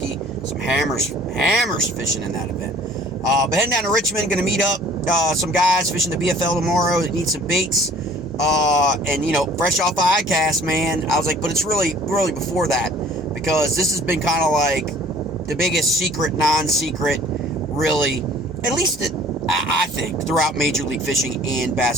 Some hammers fishing in that event. But heading down to Richmond, going to meet up some guys fishing the BFL tomorrow that need some baits. And, you know, fresh off ICAST, man, I was like, but it's really before that, because this has been kind of like the biggest secret, non-secret, really, at least I think, throughout Major League Fishing and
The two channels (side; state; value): both; normal; correlation 0.52